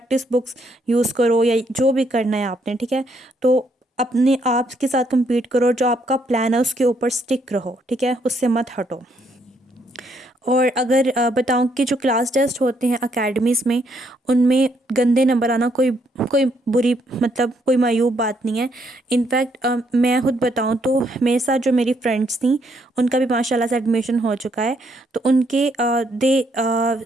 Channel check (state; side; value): normal; both; correlation 0.72